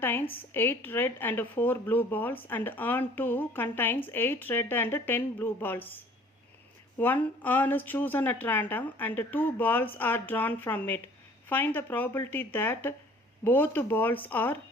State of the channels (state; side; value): normal; both; correlation 0.52